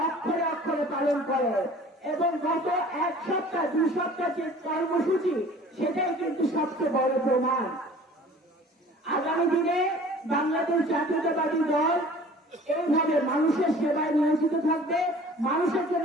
অক্ষরে অক্ষরে পালন করে। এবং গত এক সপ্তাহ 2 সপ্তাহ যে কর্মসূচি, সেটাই কিন্তু সবচেয়ে বড় প্রমাণ। আগামী দিনে বাংলাদেশ জাতীয়তাবাদী দল এইভাবে মানুষের সেবায় নিয়োজিত থাকবে, মানুষের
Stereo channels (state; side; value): normal; both; correlation 0.47